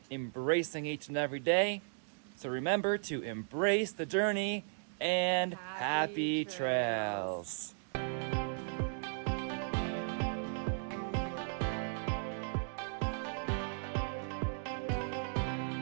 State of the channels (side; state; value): left; silent; digital silence